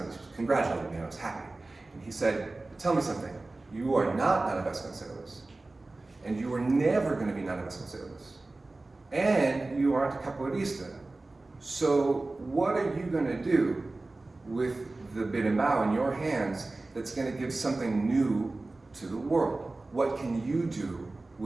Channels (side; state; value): left; quieter; 3.1 dB